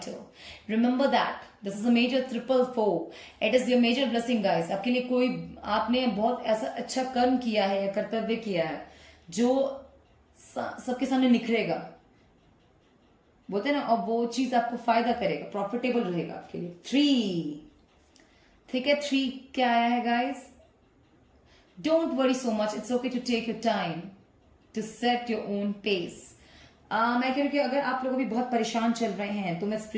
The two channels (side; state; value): both; identical; correlation 1.00